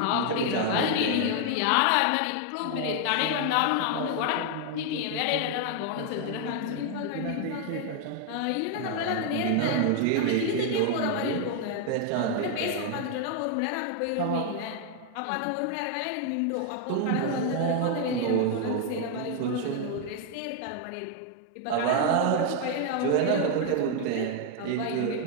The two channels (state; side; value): different; both; correlation 0.00